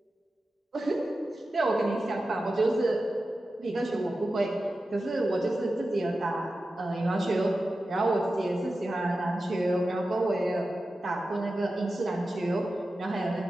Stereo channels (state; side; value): normal; both; correlation 0.93